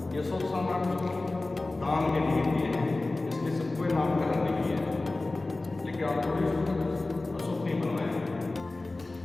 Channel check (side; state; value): right; quieter; 3.1 dB